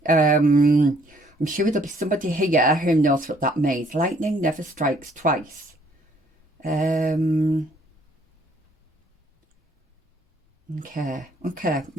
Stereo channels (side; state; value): both; normal; correlation 0.63